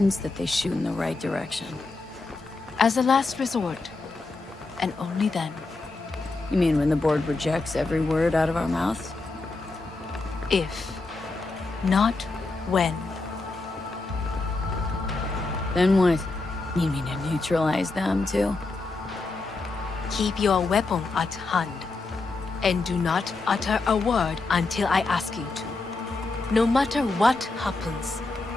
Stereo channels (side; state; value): right; quieter; 3.5 dB